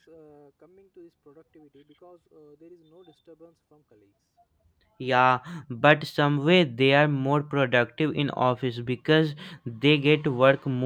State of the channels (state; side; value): identical; both; correlation 1.00